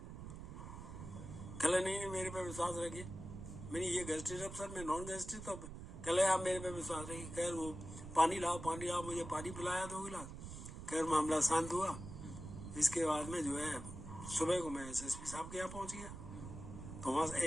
कह रहे नहीं मेरे पे विश्वास रखिए। मैंने ये गेस्टेड अफसर, मैं नॉन गेस्टेड। तो कह रहे आप मेरे पे विश्वास रखिए। खैर वो पानी लाओ, मुझे पानी पिलाया 2 गिलास। खैर मामला शांत हुआ। इसके बाद में जो है सुबह को मैं एसएसपी साहब के यहाँ पहुंच गया, तो वहाँ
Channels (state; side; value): noise; right; rumble, 10 dB below the sound